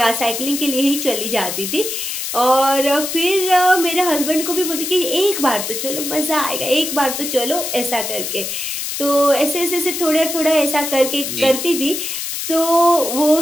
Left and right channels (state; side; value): noise; left; hiss, 4 dB below the sound